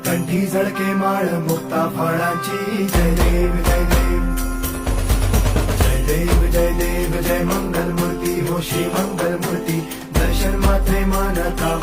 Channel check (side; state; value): both; identical; correlation 1.00